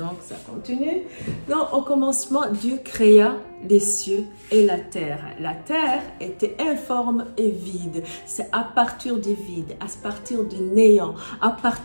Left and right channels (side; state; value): both; inverted; correlation -1.00